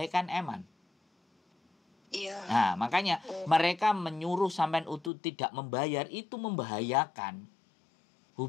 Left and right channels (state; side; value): drops out; right; at 5.1 s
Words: kan eman. Iya. Nah, makanya mereka menyuruh sampean untuk tidak membayar, itu membahayakan